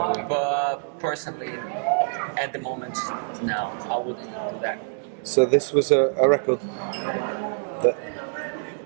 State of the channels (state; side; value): silent; left; digital silence